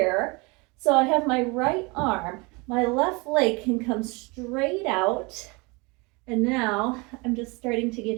So I have my right arm, my left leg can come straight out. And now I'm just starting to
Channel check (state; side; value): quieter; left; 27.5 dB